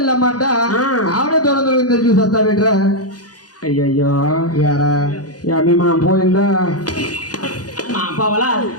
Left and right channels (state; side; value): late; right; 0.68 ms